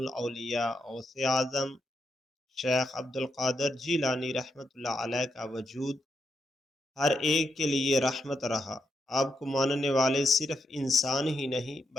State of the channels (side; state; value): both; normal; correlation 0.82